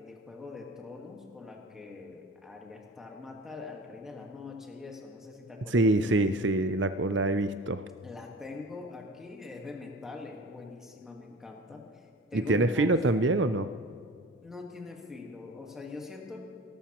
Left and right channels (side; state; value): both; normal; correlation 0.39